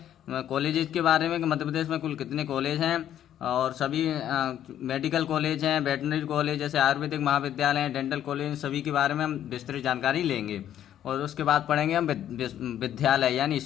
कॉलेजेस के बारे में कि मध्य प्रदेश में कुल कितने कॉलेज हैं और सभी मेडिकल कॉलेज हैं, वेटनरी कॉलेज जैसे आयुर्वेदिक महाविद्यालय हैं, डेंटल कॉलेज, सभी के बारे में हम विस्तृत जानकारी लेंगे। और उसके बाद पढ़ेंगे हम विद्यालय यानी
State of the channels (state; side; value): quieter; right; 10.9 dB